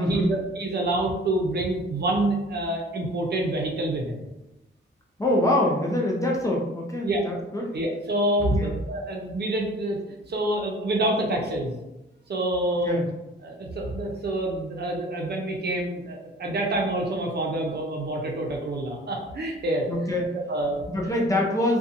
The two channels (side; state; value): both; normal; correlation 0.46